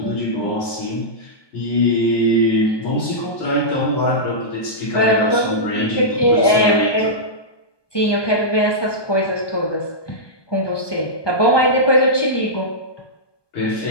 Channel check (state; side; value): late; right; 1.2 ms